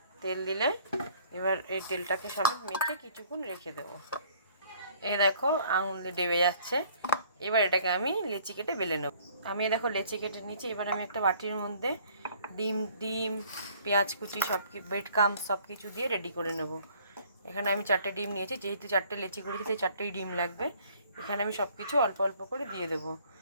তেল দিলে এবার এই তেলটাকে সমেত মেখে কিছুক্ষণ রেখে দেবো। এই দেখো, আঙুল দিয়ে ডেবে যাচ্ছে। এবার এটাকে আমি লেচি কেটে বেলে নেব। আমি দেখো লেচি কেটে নিয়েছি। এবার আমি একটা বাটির মধ্যে ডিম পেঁয়াজ কুচি ব্রেড ক্রাম্বস সব কিছু দিয়ে রেডি করে নেব। এখানে আমি 4টে ডিম নিয়েছি, যেহেতু 4টে লেচি করেছি তাই 4টেই ডিম লাগবে। এখানে আমি সব কিছু অল্প অল্প করে দিয়ে দেবো।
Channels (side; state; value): both; inverted; correlation -0.57